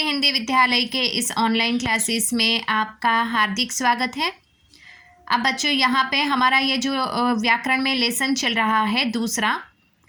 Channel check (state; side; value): identical; both; correlation 1.00